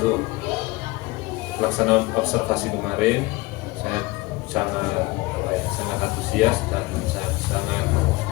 pelaksanaan observasi kemarin saya sangat antusias dan saya sangat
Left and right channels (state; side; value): quieter; right; 21.9 dB